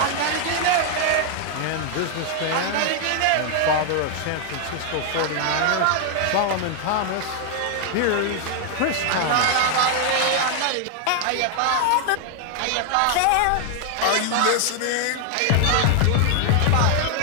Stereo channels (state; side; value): different; both; correlation 0.00